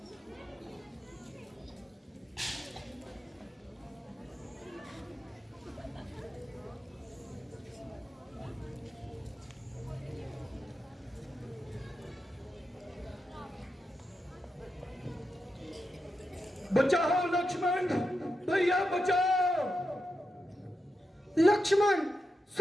बचाओ लक्ष्मण, भैया बचाओ। लक्ष्मण,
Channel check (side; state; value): both; normal; correlation 0.87